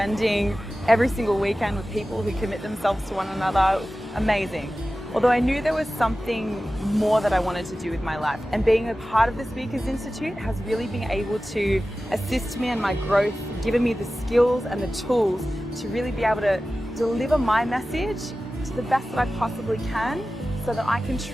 every single weekend with people who commit themselves to one another. It was amazing. although I knew there was something more that I wanted to do with my life. And being a part of the Speakers Institute has really been able to assist me in my growth, given me the skills and the tools to really be able to deliver my message to the best that I possibly can, so that I can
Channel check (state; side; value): normal; both; correlation 0.95